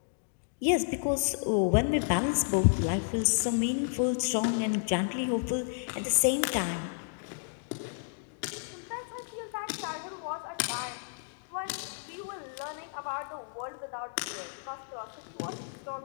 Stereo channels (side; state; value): right; silent; digital silence